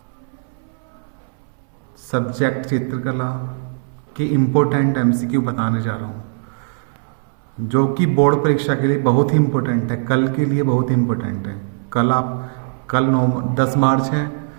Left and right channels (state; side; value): silent; left; 63 dB below the other